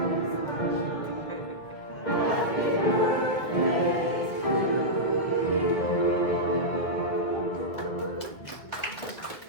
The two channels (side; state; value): right; late; 1.6 ms